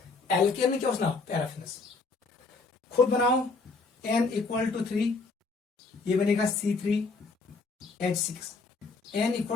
Alkene में क्या होना, पैराफिनस। खुद बनाओ, n = 3, ये बनेगा C3H6, n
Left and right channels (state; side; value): quieter; right; 4.0 dB